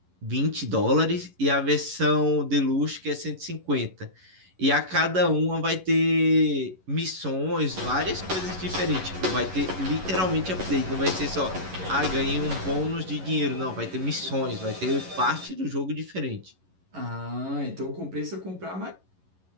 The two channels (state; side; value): late; left; 11 ms